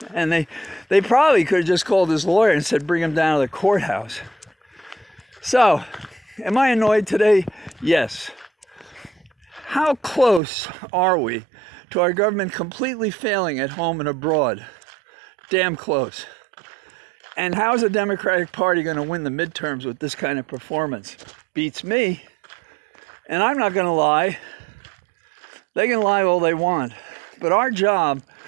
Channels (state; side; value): drops out; left; at 10.4 s